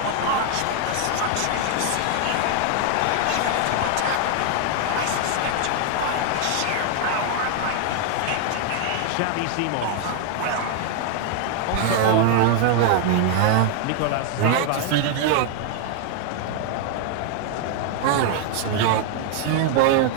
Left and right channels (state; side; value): different; both; correlation 0.00